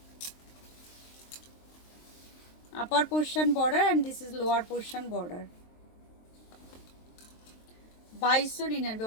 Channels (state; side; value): late; right; 23 ms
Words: Upper portion border and this is lower portion border. 2299।